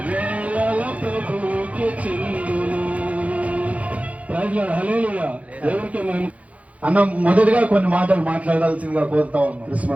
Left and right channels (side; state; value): left; late; 0.066 ms